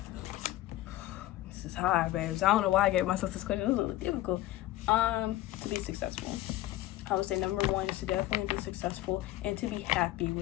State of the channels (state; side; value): quieter; right; 15.2 dB